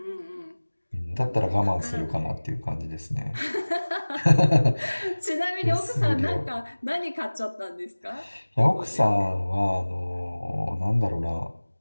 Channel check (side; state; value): both; inverted; correlation -1.00